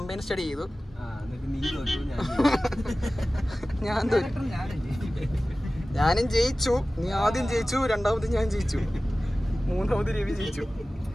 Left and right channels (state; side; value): normal; both; correlation 0.97